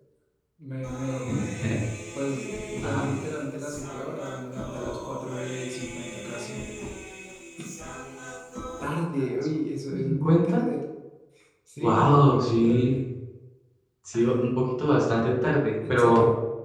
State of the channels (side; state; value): both; identical; correlation 1.00